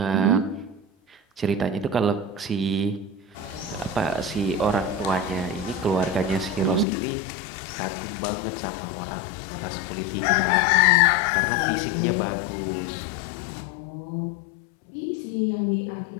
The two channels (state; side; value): drops out; right; at 6.9 s